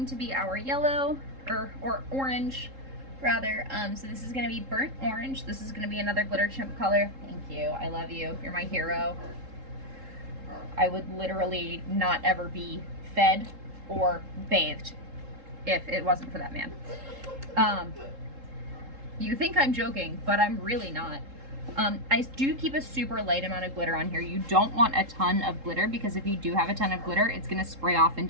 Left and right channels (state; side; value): late; left; 3.7 ms